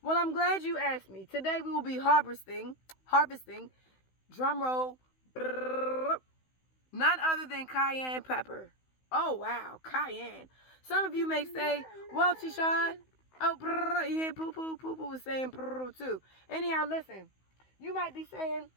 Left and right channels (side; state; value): right; late; 16 ms